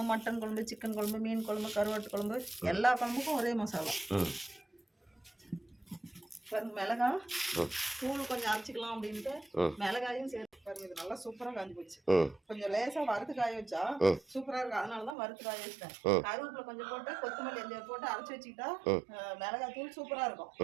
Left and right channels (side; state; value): left; drops out; at 15.2 s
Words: மட்டன் குழம்பு, சிக்கன் குழம்பு, மீன் குழம்பு, கருவாட்டு குழம்பு, எல்லா குழம்புக்கும் ஒரே மசாலா. பாருங்க மிளகா தூள் கொஞ்சம் அரைச்சிக்கலாம் அப்படின்ட்டு மிளகாயும் சேர்த்து பாருங்க. இது நல்லா சூப்பரா காஞ்சி போச்சு. கொஞ்சம் லேசா வறுத்து காய வச்சா சூப்பரா இருக்கு. அதனாலதான் வறுத்து காய வச்சிட்டேன். கருவேப்பிலை கொஞ்சம் போட்டு கொத்தமல்லி எந்த போட்டு அரைச்சி வச்சுக்கிட்டா மிளகாய் தூள் சூப்பரா இருக்கும்.